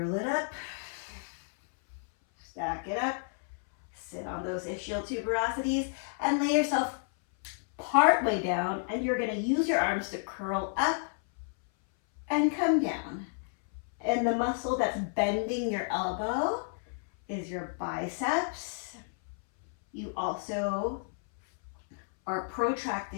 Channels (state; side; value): silent; right; 57 dB below the other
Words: it up, stack it up, sit on those ischial tuberosities, and lay yourself part way down, and you're gonna use your arms to curl up and come down. And the muscle that's bending your elbow is your biceps. You also are